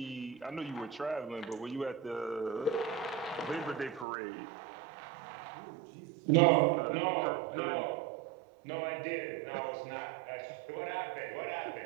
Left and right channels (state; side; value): drops out; left; at 4.0 s